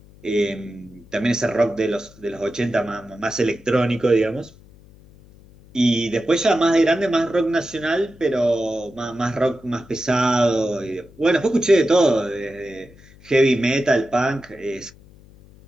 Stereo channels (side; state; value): left; noise; hum, 24 dB below the sound